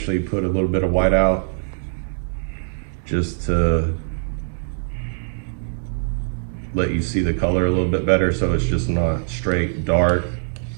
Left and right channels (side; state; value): left; silent; 64 dB below the other